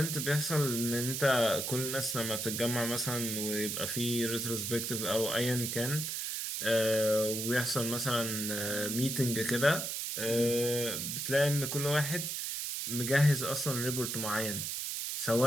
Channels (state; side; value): noise; right; hiss, 3 dB below the sound